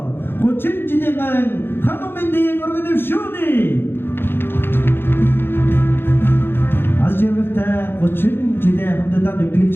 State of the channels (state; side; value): late; right; 0.10 ms